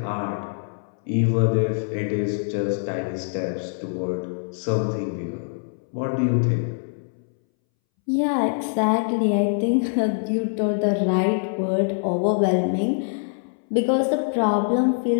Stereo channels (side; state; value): right; silent; 63 dB below the other